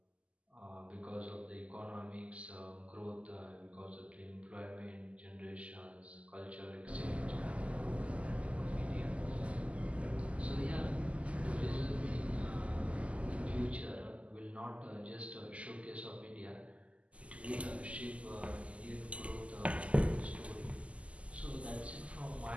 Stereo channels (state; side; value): late; left; 0.063 ms